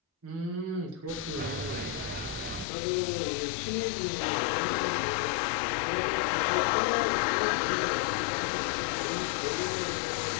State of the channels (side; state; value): right; drops out; at 2.7 s